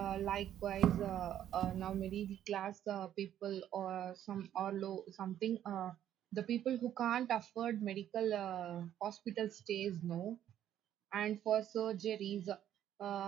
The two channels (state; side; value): quieter; left; 11.0 dB